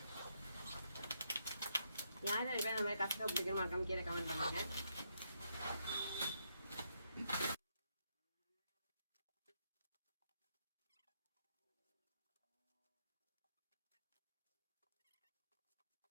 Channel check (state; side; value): inverted; both; correlation -0.78